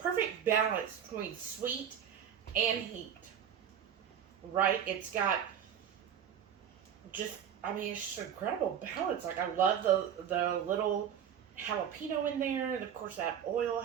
balance between sweet and heat. Right? It's got just, I mean, it's just incredible balance. Like I love the little jalapeno in there, and of course that oil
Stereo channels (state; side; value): quieter; left; 8.7 dB